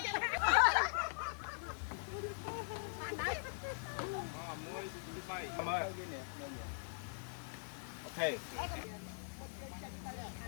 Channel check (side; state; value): right; silent; digital silence